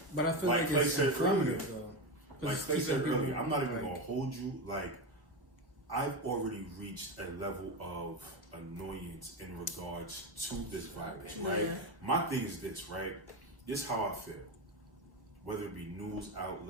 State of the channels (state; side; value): normal; both; correlation 0.15